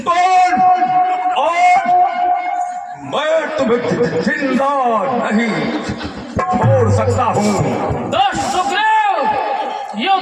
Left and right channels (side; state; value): both; identical; correlation 1.00